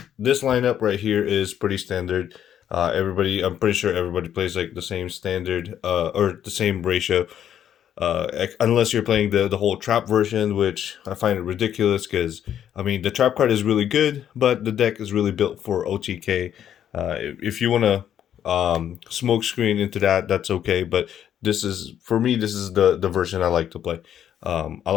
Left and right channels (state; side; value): quieter; right; 9.9 dB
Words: This lineup right here is pretty standard. I'm pretty sure everybody plays like the same standard, or the same ratio. Unless you're playing the whole trap version, which I find it ridiculous because I mean the trap card is really good, but the deck is really built for OTK. If you want to smoke screen into that, that's okay. But this is for me. This is the version I like to play. I